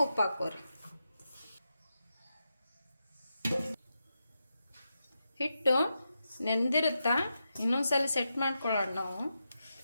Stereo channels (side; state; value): both; inverted; correlation -0.87